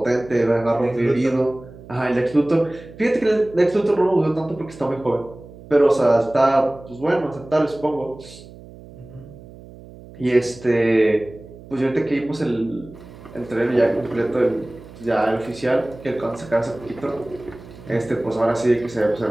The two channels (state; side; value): noise; right; hum, 19 dB below the sound